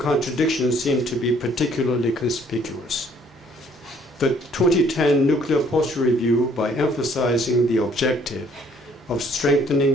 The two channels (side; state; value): both; normal; correlation 0.62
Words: seem to be particularly conspicuous. The 2010 Nuclear Posture Review, by emphasizing the objective of